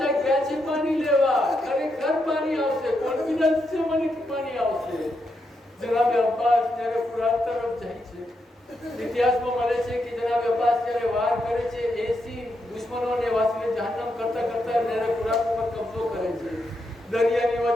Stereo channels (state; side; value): normal; both; correlation 0.82